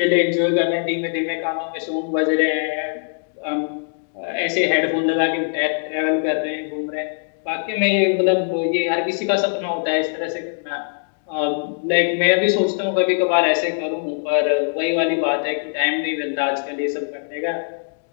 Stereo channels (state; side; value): silent; right; digital silence